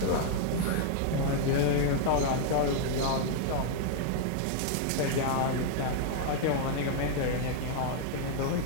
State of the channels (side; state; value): both; different; correlation 0.00